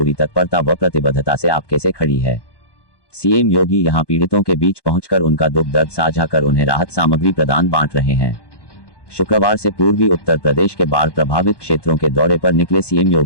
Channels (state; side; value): late; right; 1.1 ms